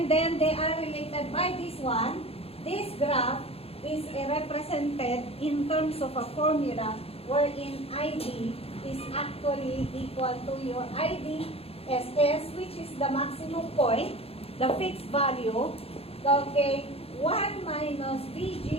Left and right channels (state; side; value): late; right; 0.28 ms